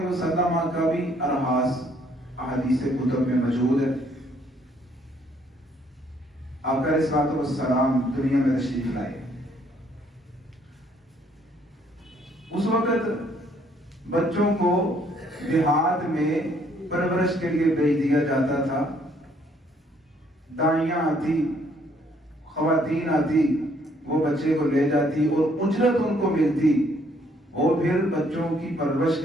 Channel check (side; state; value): both; normal; correlation 0.66